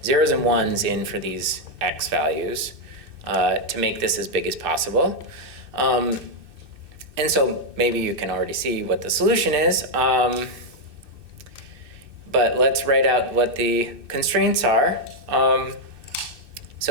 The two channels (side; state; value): left; late; 2.6 ms